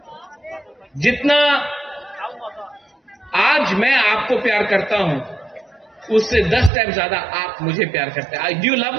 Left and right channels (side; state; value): left; drops out; at 6.7 s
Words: जितना आज मैं आपको प्यार करता हूं, उससे 10 टाइम ज्यादा आप मुझे प्यार करते हैं। Do you love